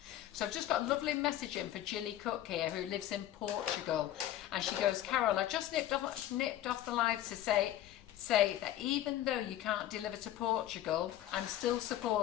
So I've just got a lovely message in for Gilly Cook here, who lives in Portugal, and she goes, Carol, I just nipped off the live to say that even though you can't deliver to Portugal, I'm still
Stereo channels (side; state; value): right; quieter; 12.9 dB